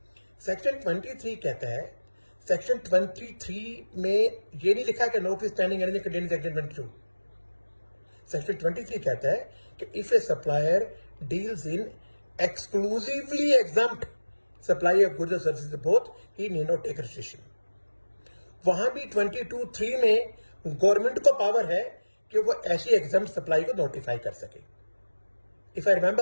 Section 23 कहता है, सेक्शन 23 में ये नहीं लिखा कि notwithstanding anything contained in section 22। Section 23 कहता है कि if a supplier deals in exclusively exempt supply of goods और services both he need not take registration. वहां भी 22(3) में गवर्नमेंट को पावर है कि वो ऐसी एग्जम्प्ट सप्लाई को नोटिफाई कर सके। If I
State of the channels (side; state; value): both; inverted; correlation -1.00